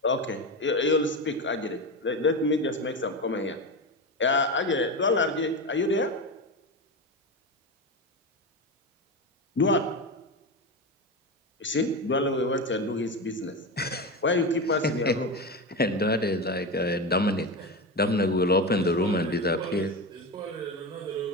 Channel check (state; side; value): normal; both; correlation 0.19